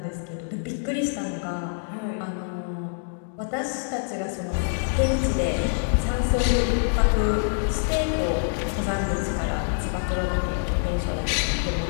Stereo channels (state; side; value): silent; right; digital silence